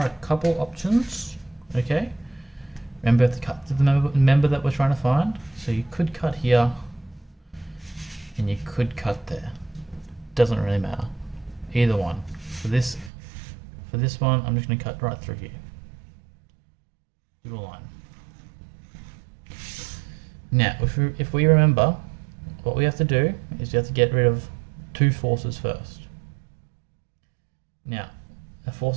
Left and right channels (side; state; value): left; drops out; at 13.1 s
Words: a couple options, okay? Remember, you have to cut to the member that we're trying to find. So you could cut here, and you could cut there. Doesn't really matter. Either one. For this one, I'm just going to cut right through here. Do a line. Now, if we remember, what we have to do is we have to get rid of 2 forces first. Now, the